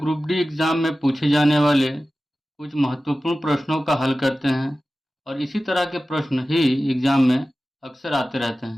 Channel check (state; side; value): normal; both; correlation 0.95